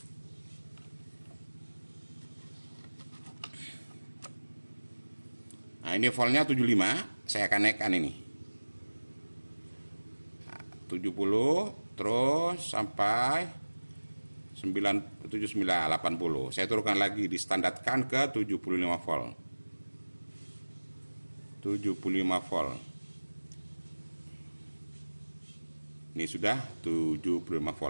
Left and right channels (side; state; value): both; inverted; correlation -1.00